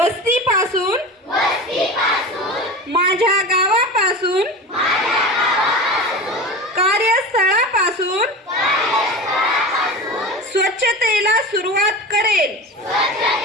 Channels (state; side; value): normal; both; correlation 0.30